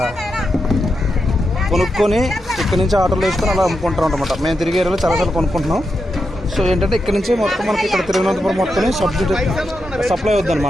కొనుక్కొని ఇక్కడ నుంచి ఆటోలో వేసుకొని అలా అమ్ముకుంటాం అనమాట. మేము తిరిగే ఏరియాలో చాలాసార్లు కొనుక్కుంటున్నాం. సో ఏంటంటే ఇక్కడ నుంచి మొత్తం మనకి ఇక్కడ తిరువనంతపురం మొత్తం సప్లై అవుద్ది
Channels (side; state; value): both; normal; correlation 0.86